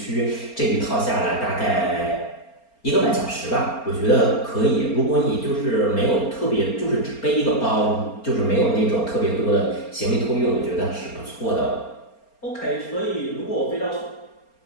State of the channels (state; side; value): late; right; 4.3 ms